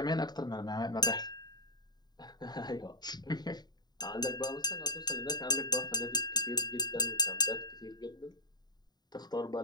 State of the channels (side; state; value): right; late; 0.20 ms